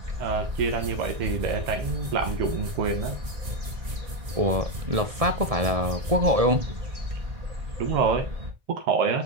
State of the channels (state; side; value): late; left; 1.9 ms